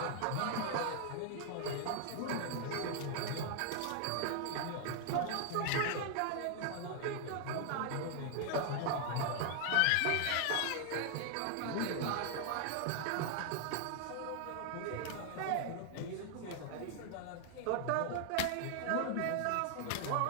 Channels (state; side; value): different; both; correlation 0.00